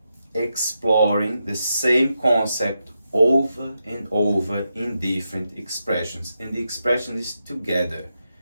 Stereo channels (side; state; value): both; inverted; correlation -0.86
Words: exploring the same concept over and over in different expressions. And the expression is together,